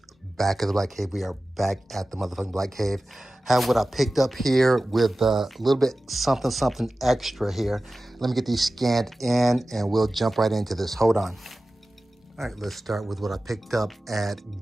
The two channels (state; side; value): normal; both; correlation 0.95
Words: Back at the Black Cave. We are back at the motherfucking Black Cave. Have what I picked up here with a little bit something extra here. Let me get these scanned in and we'll jump right into this. Hold on. All right, let's start with what I picked up at